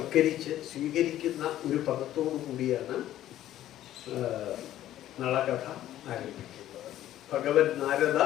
സ്വീകരിക്കുന്ന ഒരു പദത്തോടു കൂടിയാണ് നളകഥ ആരംഭിക്കുന്നത്. ഭഗവൻ നാരദ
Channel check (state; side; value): quieter; right; 13.0 dB